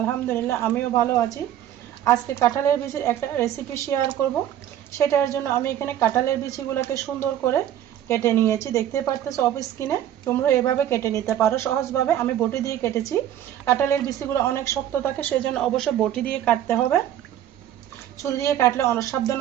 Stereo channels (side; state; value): left; quieter; 11.3 dB